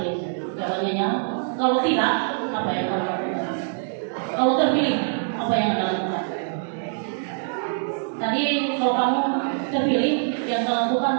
jawabannya kalau tidak, apa yang Anda lakukan? Kalau terpilih, apa yang Anda lakukan? Tadi kalau kamu terpilih, yang Anda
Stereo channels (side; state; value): left; silent; digital silence